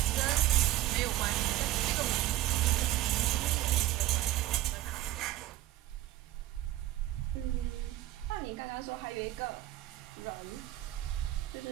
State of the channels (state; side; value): quieter; left; 15.0 dB